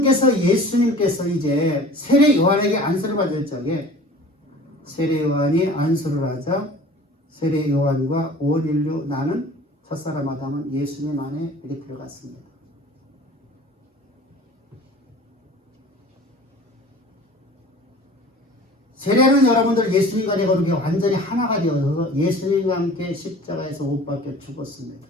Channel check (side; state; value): both; normal; correlation 0.43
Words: 예수님께서 이제 세례 요한에게 안수를 받을 적에 세례 요한이 안수를 하자 세례 요한과 온 인류 나는 첫사람 아담은 예수님 안에 이렇게 들어갔습니다. 세례는 여러분들 예수님과 내 거룩이 완전히 하나가 되어서 예수님과 함께 십자가에서 못 박혀 죽었습니다.